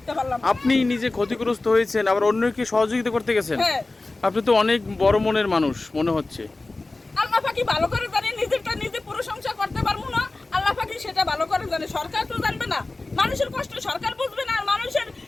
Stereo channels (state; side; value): quieter; right; 3.2 dB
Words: পারলাম। আপনি নিজে ক্ষতিগ্রস্ত হয়েছেন, আবার অন্যকে সহযোগিতা করতে গেছেন। হ্যাঁ, আপনি তো অনেক বড় মনের মানুষ মনে হচ্ছে। আল্লাহ পাকি ভালো করে জানে, নিজেরটা নিজে প্রশংসা করতে পারবো না, আল্লাহ পাকি সেটা ভালো করে জানে। সরকার তো জানবে না, মানুষের কষ্ট সরকার বুঝবে না, আর মানুষের